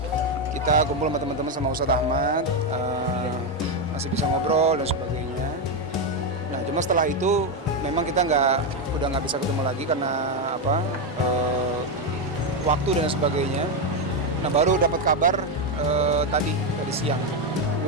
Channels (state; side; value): normal; both; correlation 0.07